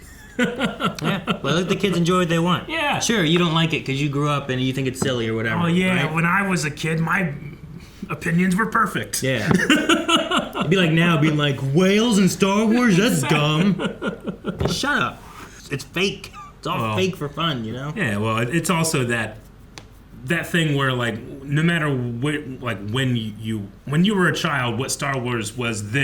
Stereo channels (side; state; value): both; identical; correlation 1.00